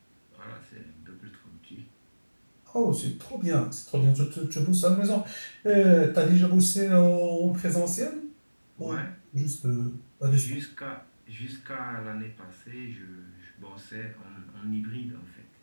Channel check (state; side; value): inverted; both; correlation -1.00